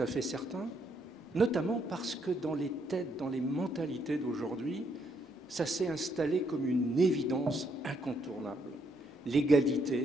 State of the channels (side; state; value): both; normal; correlation 0.74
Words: fait certain, notamment parce que dans les têtes, dans les mentalités d'aujourd'hui, ça s'est installé comme une évidence incontournable.